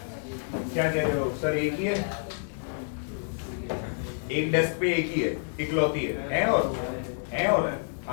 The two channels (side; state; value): right; silent; digital silence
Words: क्या कह रहे हो सर? एक ही है, एक डेस्क पे एक ही है, इकलौती है और